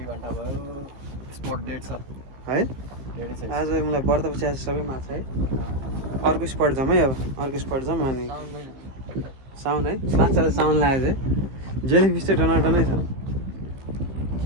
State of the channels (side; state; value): left; late; 15 ms